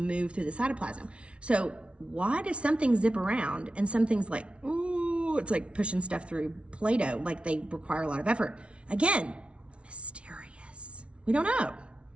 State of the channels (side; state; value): left; late; 0.060 ms